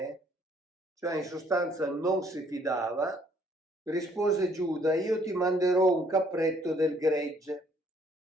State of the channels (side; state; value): both; normal; correlation 0.64